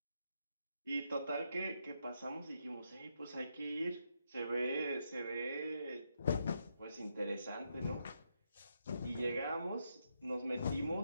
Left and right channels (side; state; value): both; inverted; correlation -0.80